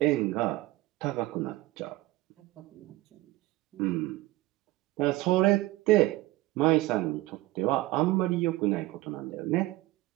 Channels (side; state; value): left; quieter; 18.3 dB